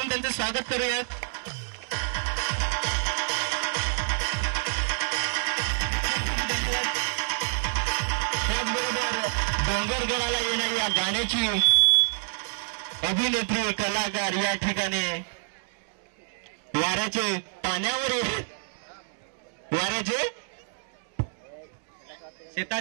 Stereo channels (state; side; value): silent; left; 60 dB below the other